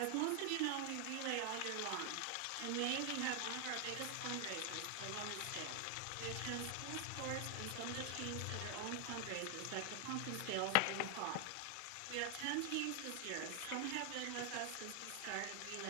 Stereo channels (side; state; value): both; different; correlation 0.00